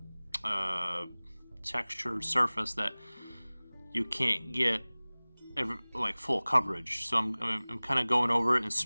textured surface that you can't get like full coverage. So I'm kind of going over it and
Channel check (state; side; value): inverted; both; correlation -1.00